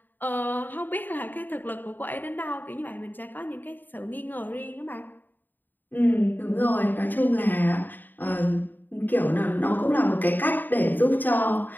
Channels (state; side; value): late; right; 0.090 ms